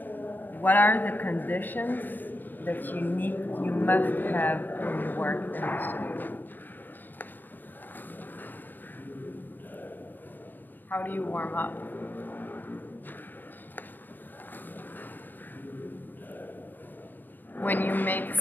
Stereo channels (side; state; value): right; late; 0.089 ms